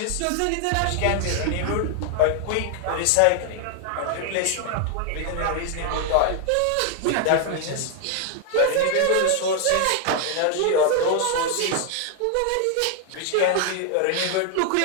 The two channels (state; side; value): different; both; correlation 0.00